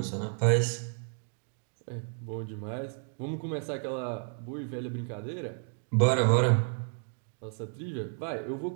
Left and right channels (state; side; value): silent; left; 57 dB below the other